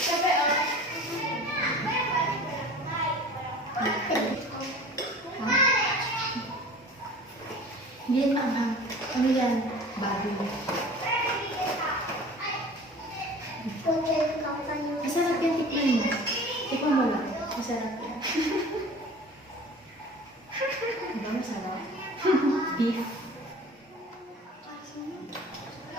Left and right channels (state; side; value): normal; both; correlation 0.42